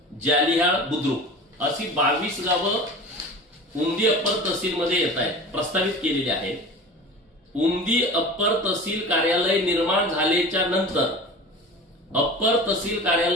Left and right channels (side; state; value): both; normal; correlation 0.36